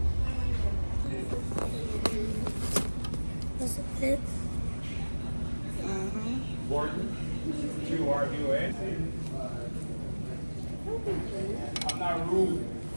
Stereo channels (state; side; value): inverted; both; correlation -1.00